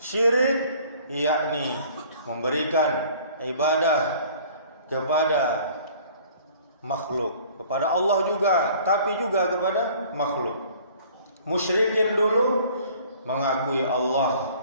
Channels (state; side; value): inverted; both; correlation -0.52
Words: yakni memberikan ibadah kepada makhluk, kepada Allah juga, tapi juga kepada makhluk. Musyrikin dulu mengakui Allah